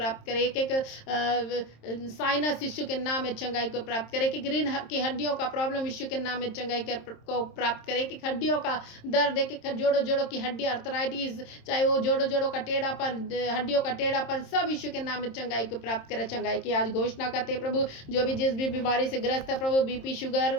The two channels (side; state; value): right; late; 26 ms